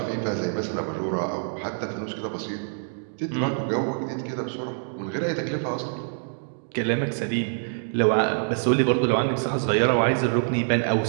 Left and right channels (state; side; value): silent; left; digital silence